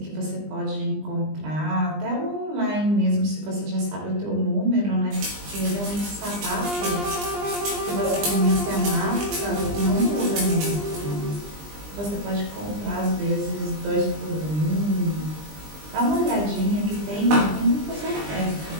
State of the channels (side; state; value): left; late; 20 ms